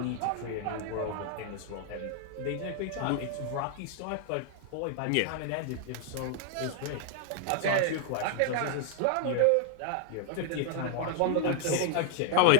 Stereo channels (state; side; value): different; both; correlation 0.00